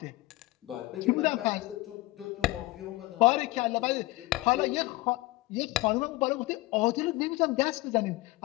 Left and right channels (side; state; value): right; quieter; 20.2 dB